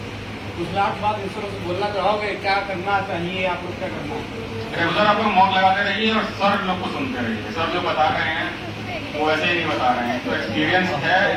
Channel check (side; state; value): both; identical; correlation 1.00